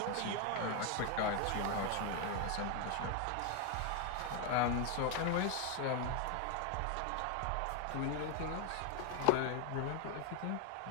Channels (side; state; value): both; different; correlation 0.01